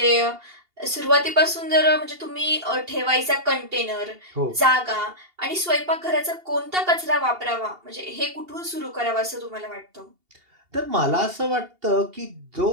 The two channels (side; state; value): left; late; 2.8 ms